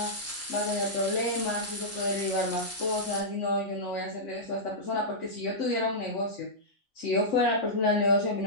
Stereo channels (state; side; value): normal; both; correlation -0.12